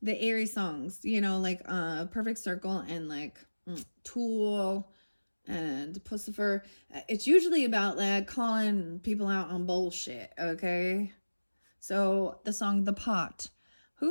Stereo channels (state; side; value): inverted; both; correlation -1.00